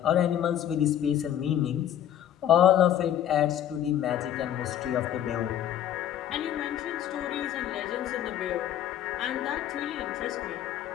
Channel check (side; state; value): right; quieter; 10.8 dB